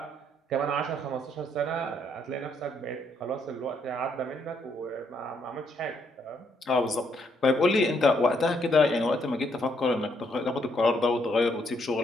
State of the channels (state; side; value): normal; both; correlation 0.72